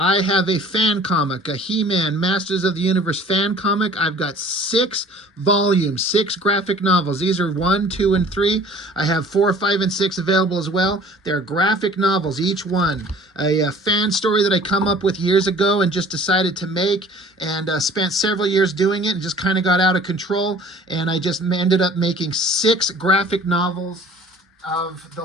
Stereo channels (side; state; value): both; normal; correlation 0.49